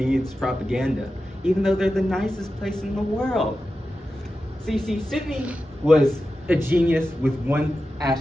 propaganda, even though they're the nicest place in the world. So you see, Sydney was a genius with one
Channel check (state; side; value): normal; both; correlation 0.92